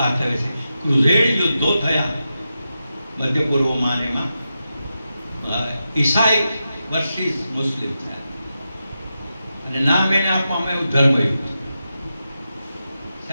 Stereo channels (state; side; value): inverted; both; correlation -0.89